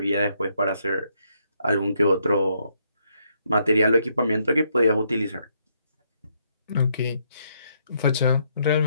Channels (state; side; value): inverted; both; correlation -0.74